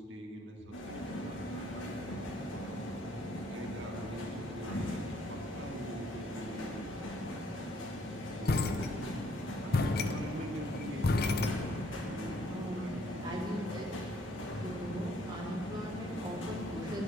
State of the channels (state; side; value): normal; both; correlation 0.65